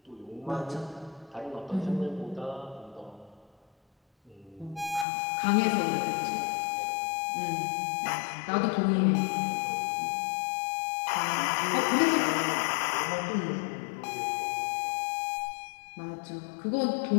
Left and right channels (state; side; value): drops out; right; at 5.1 s